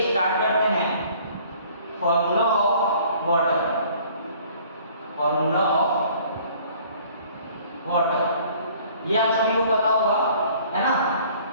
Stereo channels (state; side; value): inverted; both; correlation -0.54